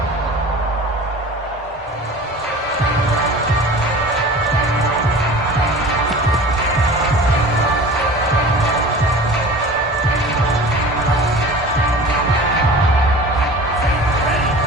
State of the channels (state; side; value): normal; both; correlation 0.39